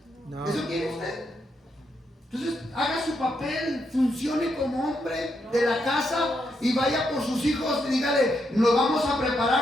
No. ¿Eso quiere usted? Entonces, haga su papel, funcione como hombre de la casa y vaya por sus hijos y dígale, nos vamos a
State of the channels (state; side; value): normal; both; correlation 0.80